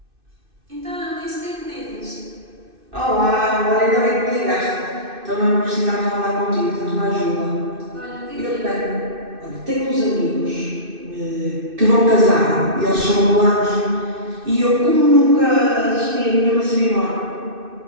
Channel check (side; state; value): left; late; 2.6 ms